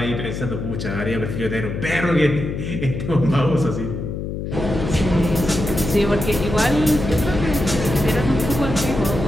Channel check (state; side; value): noise; left; hum, 5 dB below the sound